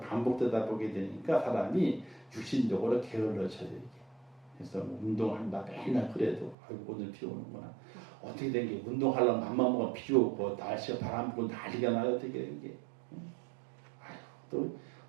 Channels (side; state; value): left; drops out; at 6.6 s